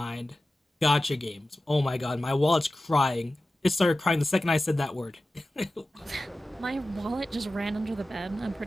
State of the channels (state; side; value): normal; both; correlation 0.94